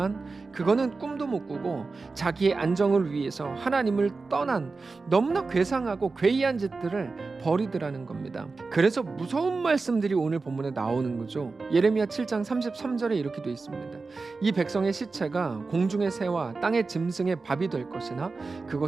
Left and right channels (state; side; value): quieter; left; 4.0 dB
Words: 그거는 꿈도 못 꾸고 자기의 안정을 위해서 하나님을 떠난 너무나 괴상하고 괴이한 짓들을 버리더라는 겁니다. 그래서 무서운 말씀들이 오늘 본문에 나오는 거죠. 예레미야 7장 33절에 이렇게 되어 있습니다. 이 백성의 시체가 공중의 새와 땅의 짐승의 밥이 될 것이나